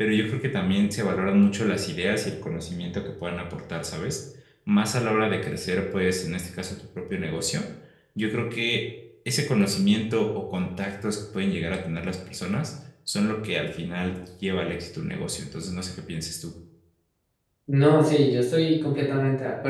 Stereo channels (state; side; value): identical; both; correlation 1.00